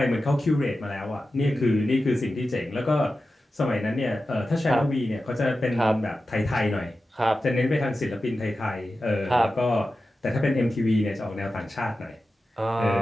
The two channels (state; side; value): normal; both; correlation 0.93